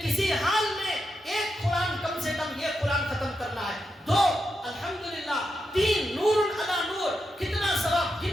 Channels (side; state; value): both; normal; correlation 0.86